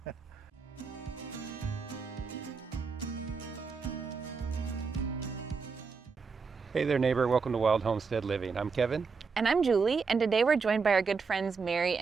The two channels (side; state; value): left; quieter; 5.1 dB